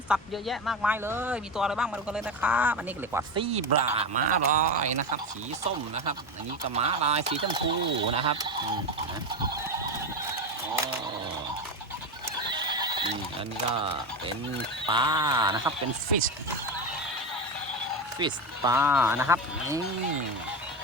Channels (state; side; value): normal; both; correlation 0.17